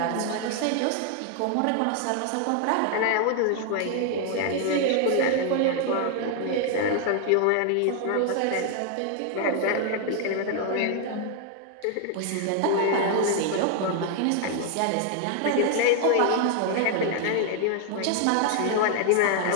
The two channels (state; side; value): different; both; correlation 0.00